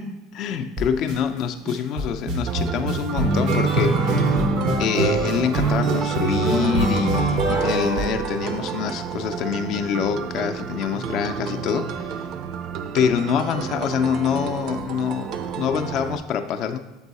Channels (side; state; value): both; normal; correlation 0.47